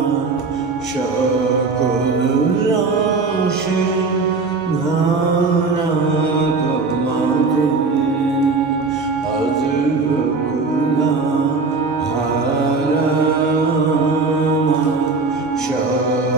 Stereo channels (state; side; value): quieter; left; 4.1 dB